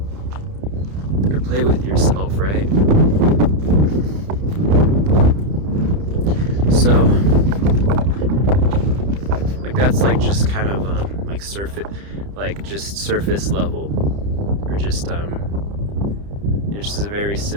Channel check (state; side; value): late; left; 30 ms